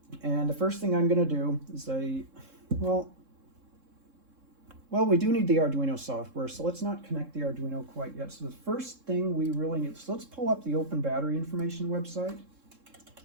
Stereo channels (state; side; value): late; left; 3.7 ms